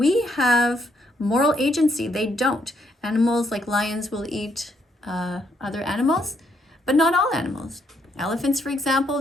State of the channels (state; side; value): normal; both; correlation 0.73